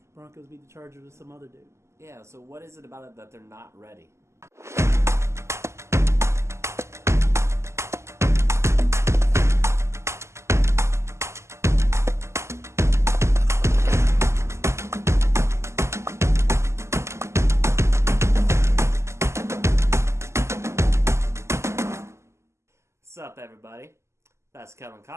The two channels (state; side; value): late; left; 0.13 ms